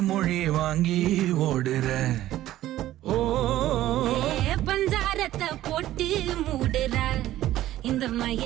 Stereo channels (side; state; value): left; quieter; 14.1 dB